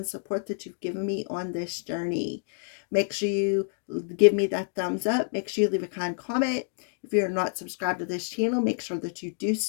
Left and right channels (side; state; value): right; silent; digital silence